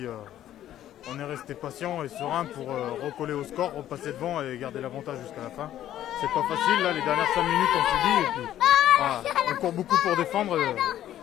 on est resté patient et serein pour recoller au score, repasser devant et garder l'avantage jusqu'à la fin. C'est pas facile, là, les dernières 5 minutes on s'est dit, et puis, voilà, on court beaucoup pour défendre,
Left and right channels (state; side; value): quieter; right; 12.1 dB